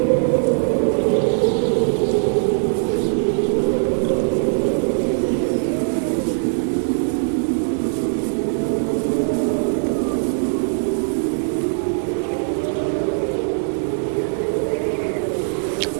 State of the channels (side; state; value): left; silent; 65 dB below the other